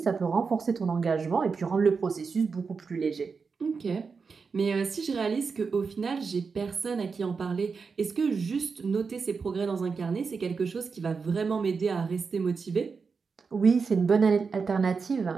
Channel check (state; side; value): quieter; left; 5.1 dB